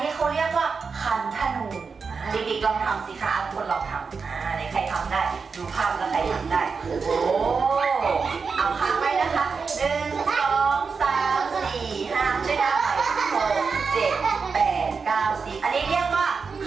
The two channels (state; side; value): quieter; left; 5.1 dB